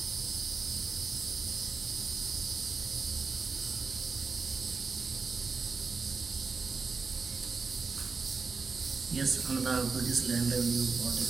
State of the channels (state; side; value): quieter; left; 4.6 dB